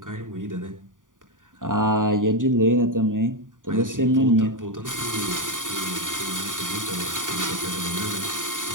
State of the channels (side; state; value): left; late; 0.88 ms